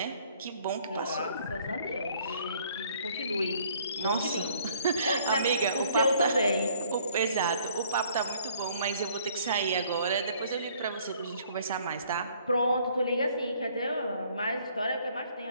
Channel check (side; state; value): both; inverted; correlation -0.60